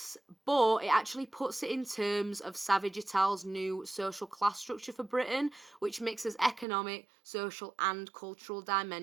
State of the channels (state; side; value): drops out; left; at 6.7 s